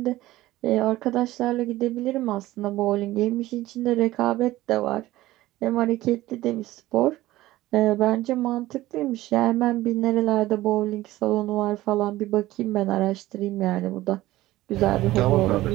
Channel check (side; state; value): left; quieter; 16.6 dB